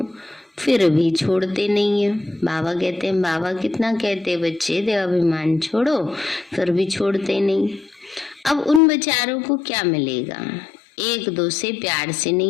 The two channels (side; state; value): right; drops out; at 8.8 s